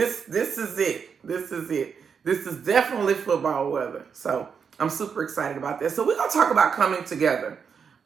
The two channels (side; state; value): left; quieter; 6.4 dB